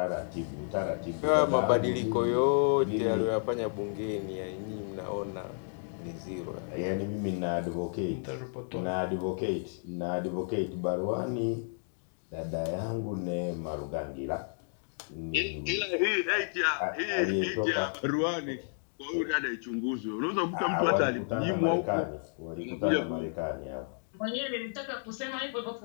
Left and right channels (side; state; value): right; silent; digital silence